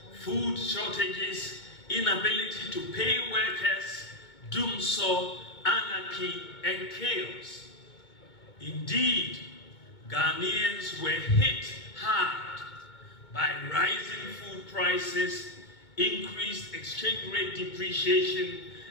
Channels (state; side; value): late; right; 2.2 ms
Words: food shortages, inability to pay workers, doomsday, anarchy, and chaos. Indeed, Ghanaians were hit hard by rising food prices, increased exchange rate depreciation,